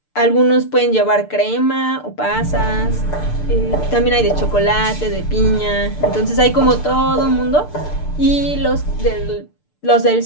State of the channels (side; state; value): right; late; 6.7 ms